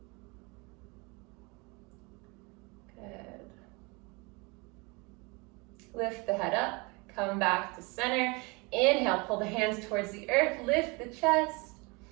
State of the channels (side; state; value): left; quieter; 28.0 dB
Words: Good. Lift the head up, come back to center. Inhale, pull the hands towards the earth, lift the chest.